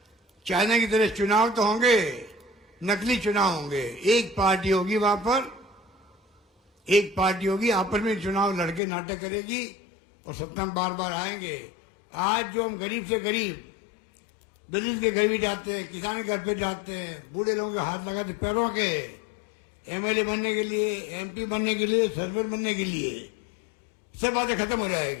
चाइना की तरह चुनाव तो होंगे, नकली चुनाव होंगे। एक पार्टी होगी वहां पर, एक पार्टी होगी, आपस में चुनाव लड़के नाटक करेगी और सत्ता में बार बार आएंगे। आज जो हम गरीब से गरीब, दलित के घर भी जाते हैं, किसान के घर पे जाते हैं, बूढ़े लोगों के हाथ लगाते पैरों के, एमएलए बनने के लिए, एमपी बनने के लिए, सरपंच बनने के लिए, सब बातें खत्म हो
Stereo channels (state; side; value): drops out; right; at 8.8 s